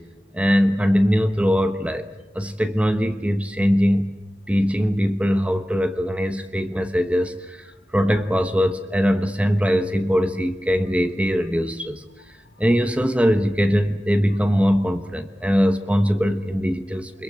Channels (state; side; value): normal; both; correlation 0.95